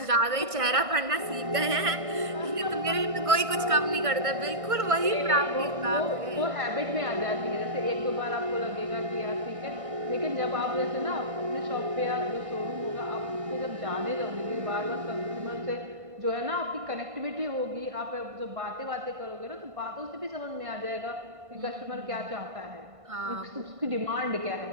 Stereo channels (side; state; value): left; late; 1.5 ms